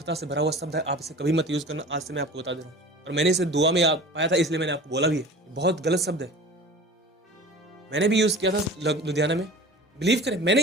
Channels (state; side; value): normal; both; correlation 0.39